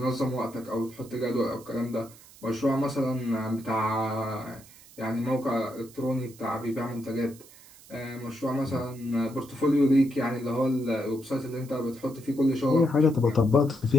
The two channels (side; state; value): right; noise; hiss, 22 dB below the sound